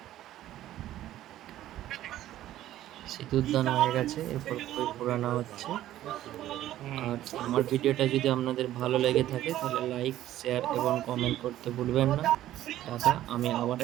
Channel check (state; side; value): quieter; left; 13.4 dB